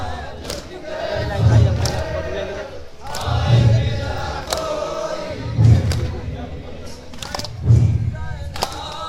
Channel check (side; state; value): both; identical; correlation 1.00